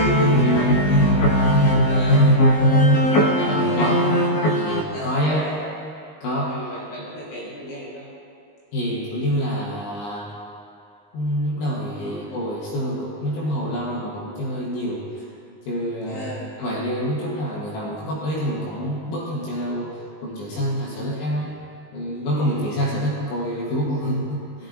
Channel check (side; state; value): right; late; 20 ms